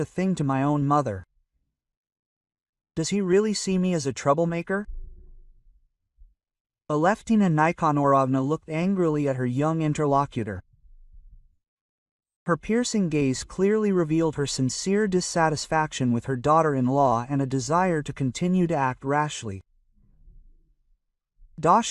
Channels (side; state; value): both; identical; correlation 1.00